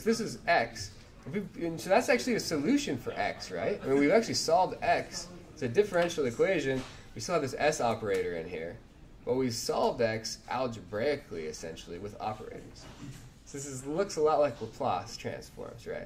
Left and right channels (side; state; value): both; identical; correlation 1.00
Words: this is x. And so that's actually a solution for x, right? I mean, we've actually solved x. It's a differential equation. We still have this s operator in here. But we solved x algebraically, essentially, with operators. So looks a lot like Laplace transforms,